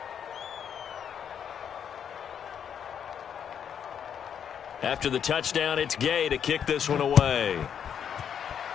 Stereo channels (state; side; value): quieter; right; 8.3 dB